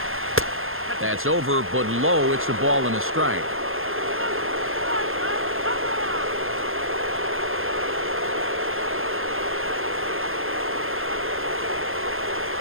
That's over, but low. It's a ball and a strike.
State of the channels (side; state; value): left; late; 0.60 ms